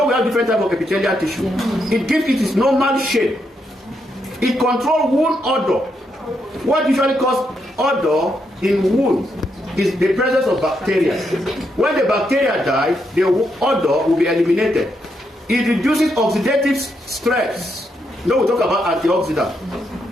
we have different types of epithelial tissue. It gives it its normal shape. It controls wound odor. What usually causes odor in wounds is the presence of bacteria. When the bacteria die, the odor will be eliminated. It reduces oxidative stress. Now we talk about antioxidant.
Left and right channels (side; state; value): both; normal; correlation 0.80